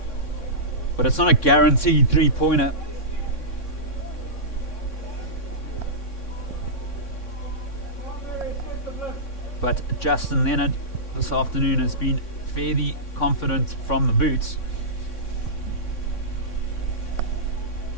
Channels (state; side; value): late; right; 3.6 ms